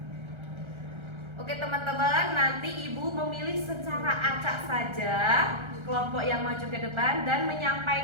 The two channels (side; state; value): left; late; 1.3 ms